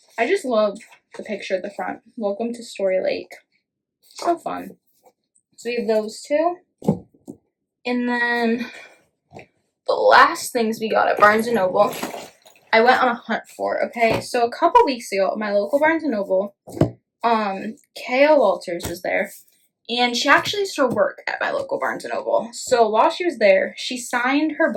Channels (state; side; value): identical; both; correlation 1.00